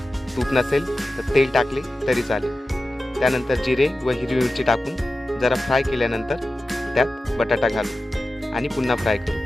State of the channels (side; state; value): both; normal; correlation 0.94